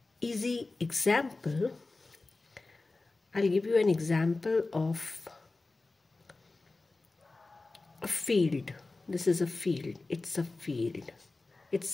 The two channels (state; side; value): quieter; right; 3.4 dB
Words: easy example. I'll give you an example of a field. This is a field. It's a field.